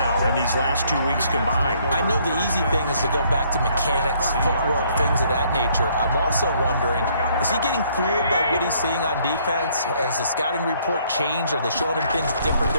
in these last 2 weeks combined. I know the easy thing is to go back to mechanics, footwork, things of that nature. I'm also wondering, is he getting fooled by what he's seeing on defense? Has the scouting report changed? Are they showing him things different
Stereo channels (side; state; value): both; inverted; correlation -0.65